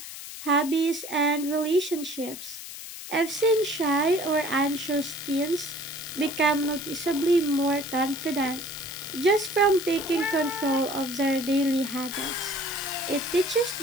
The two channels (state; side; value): noise; left; hiss, 11 dB below the sound